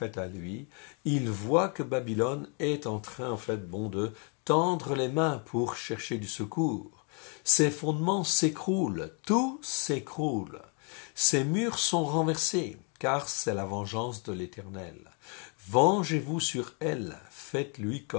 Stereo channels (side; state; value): right; quieter; 38.1 dB